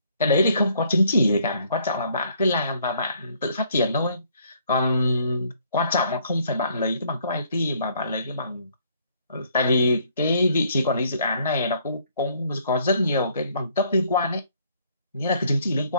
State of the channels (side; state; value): both; inverted; correlation -0.65